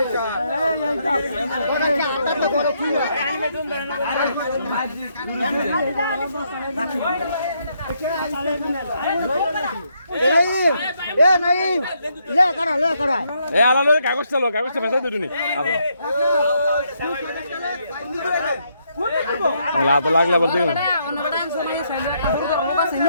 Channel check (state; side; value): inverted; both; correlation -0.75